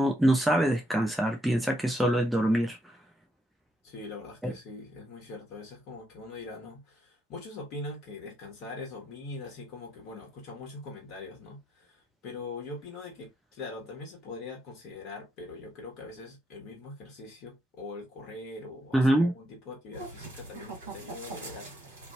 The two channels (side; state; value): both; normal; correlation 0.78